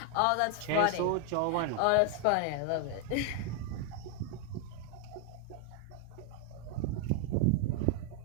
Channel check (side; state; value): both; different; correlation 0.00